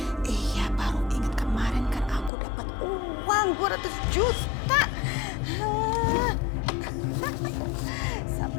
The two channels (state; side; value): drops out; right; at 2.3 s